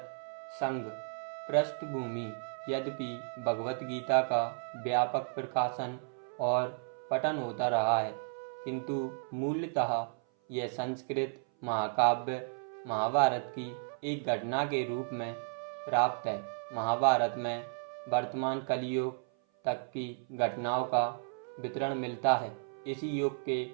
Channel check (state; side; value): silent; left; 55 dB below the other